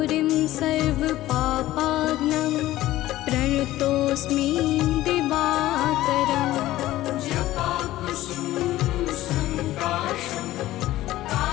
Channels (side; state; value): right; quieter; 15.6 dB